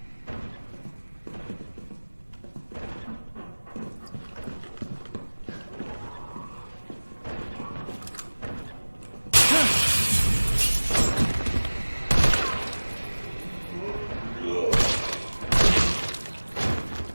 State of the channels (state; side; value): inverted; both; correlation -1.00